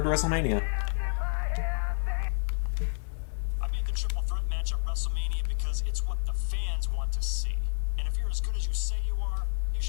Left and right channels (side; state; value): right; silent; digital silence